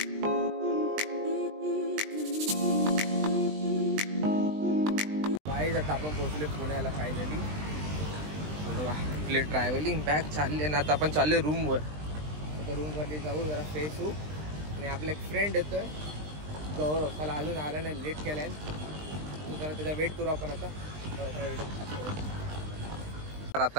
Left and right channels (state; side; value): late; left; 20 ms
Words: आता आपण पोहोचले पुण्याला फायनली. आपले ट्रॅव्हलिंग बॅग चालले ना. आता आपण चालले रूमवर. आता रूमवरती जाऊ, जरा फ्रेश होऊ. आणि आपला एक फ्रेंड येतोय गौरव, त्याला अजून आला नाही, लेट केलाय. जरा त्याचा वेट करू आपण आता.